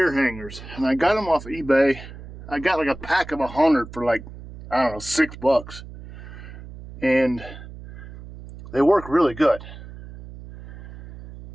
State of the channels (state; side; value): noise; right; hum, 15 dB below the sound